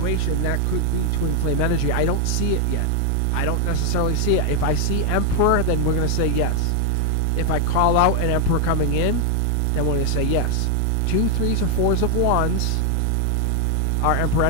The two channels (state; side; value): different; both; correlation 0.00